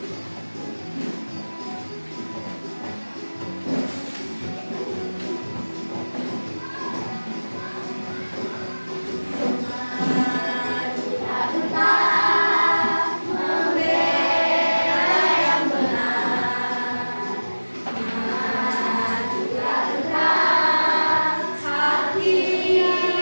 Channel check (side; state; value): both; inverted; correlation -1.00